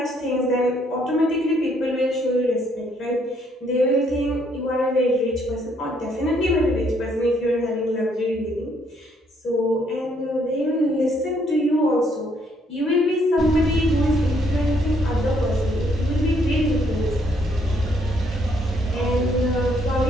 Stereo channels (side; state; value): both; normal; correlation 0.69